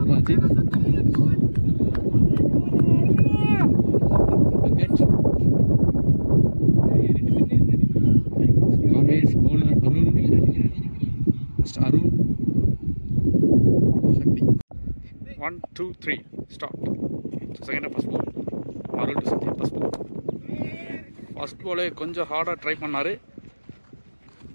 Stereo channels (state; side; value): inverted; both; correlation -1.00